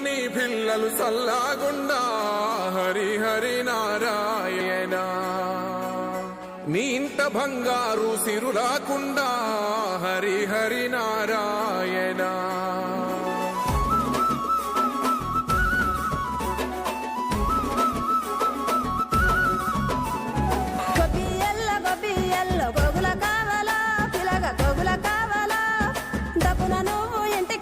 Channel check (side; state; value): both; identical; correlation 1.00